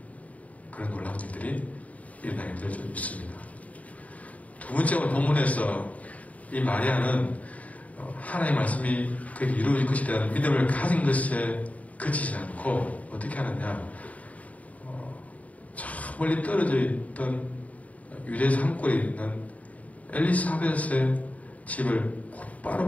그런 놀라운 일들이 일어나게 될 줄 믿습니다. 두 번째 오늘 본문에서 이 마리아는 하나님의 말씀이 그에게 이루어질 것에 대한 믿음을 가진 것에 그치지 않고 어떻게 하느냐, 저 멀리 떨어져 있던 유대 산골에 있는 엘리사벳의 집을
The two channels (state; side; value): late; right; 0.070 ms